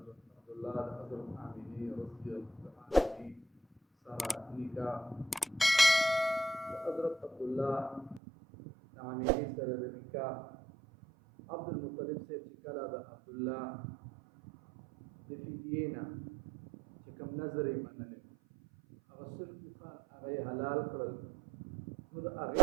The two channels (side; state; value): left; drops out; at 8.2 s